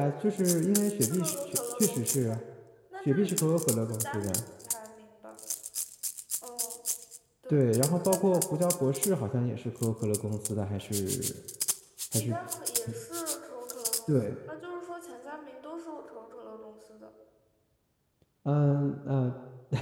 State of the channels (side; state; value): both; identical; correlation 1.00